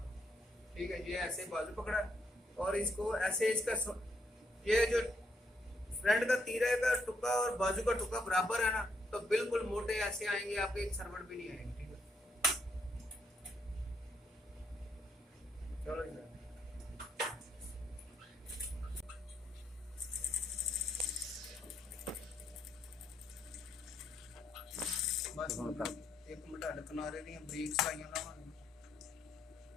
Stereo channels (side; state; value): both; normal; correlation 0.75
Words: ठीक है, ये ऐसे बाजू पकड़ा और इसको ऐसे, इसका ये जो फ्रंट का तीरे का टुक्का और बाजू का टुक्का बराबर है ना, तो बिल्कुल मोटे ऐसे आएंगे, आपके एक सरवट भी नहीं आएंगे, ठीक है। चलो इधर बस एक मिनट हट किनारे दी बरीक सलाइयां लावांगे।